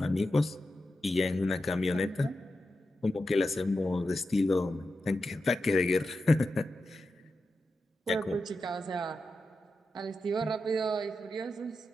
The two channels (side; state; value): both; normal; correlation 0.90